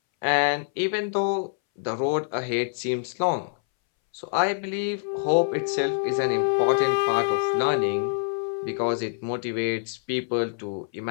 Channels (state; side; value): silent; right; 61 dB below the other